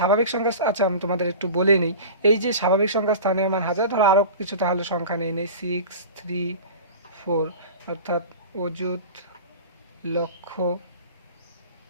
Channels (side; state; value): both; inverted; correlation -0.35